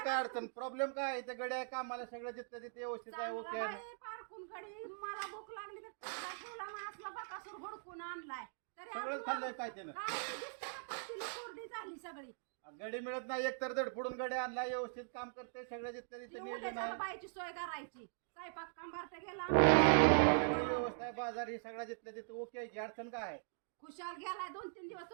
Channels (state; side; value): silent; left; digital silence